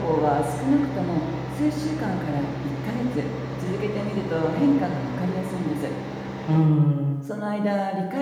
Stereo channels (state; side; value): identical; both; correlation 1.00